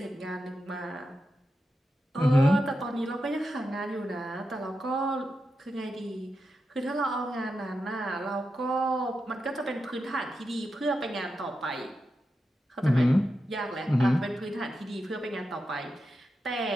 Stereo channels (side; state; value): both; normal; correlation 0.88